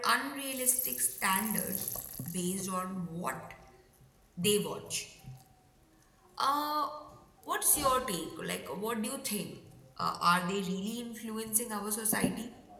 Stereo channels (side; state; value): both; identical; correlation 1.00